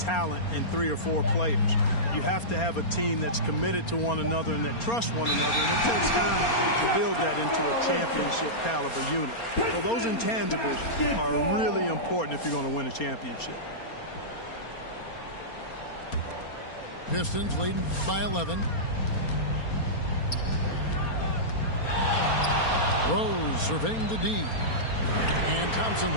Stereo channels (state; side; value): late; right; 4.3 ms